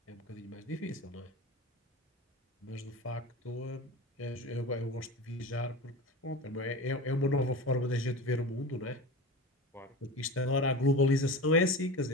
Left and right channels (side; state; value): both; normal; correlation 0.30